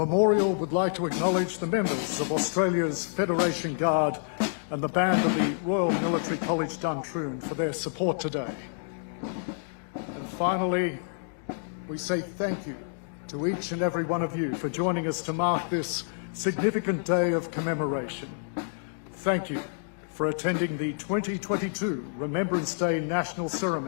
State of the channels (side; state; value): right; silent; digital silence